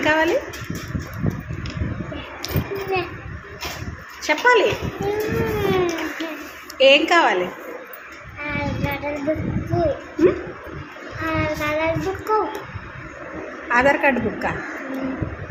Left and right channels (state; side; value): identical; both; correlation 1.00